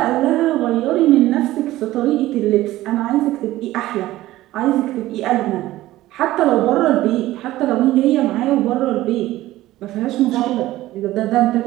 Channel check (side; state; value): left; quieter; 16.0 dB